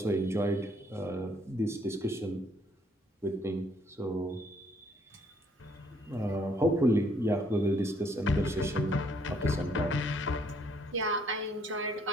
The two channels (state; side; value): normal; both; correlation 0.66